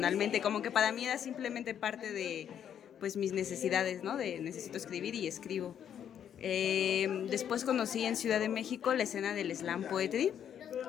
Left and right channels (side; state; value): right; quieter; 9.2 dB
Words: como que para mí era simplemente parte de pues mis necesidades, ¿no? De necesito escribir y escribo. Después conocí en Ciudad de México la escena del slam poetry,